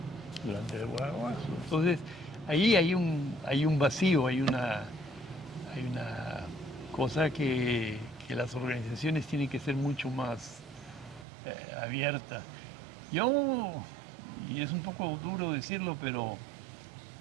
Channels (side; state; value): left; drops out; at 11.2 s